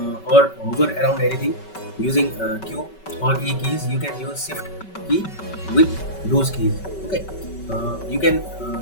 or hover around anything using Q or E keys, you can use shift key with those keys. Okay, you can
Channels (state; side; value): late; right; 5.3 ms